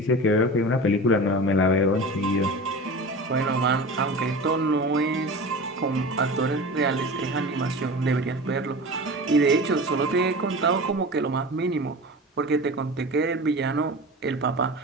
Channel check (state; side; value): normal; both; correlation 0.32